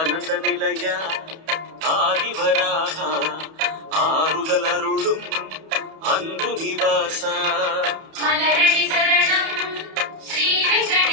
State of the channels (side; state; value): left; late; 31 ms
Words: நிலையா ஆதிவராக ஆறுதல் அருளும் அன்பு நிவாசா மலரடி சரணம் ஸ்ரீ